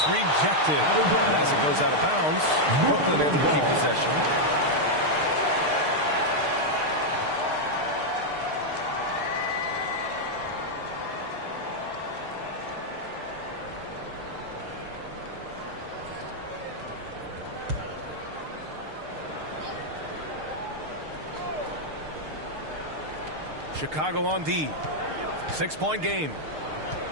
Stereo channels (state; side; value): late; left; 6.6 ms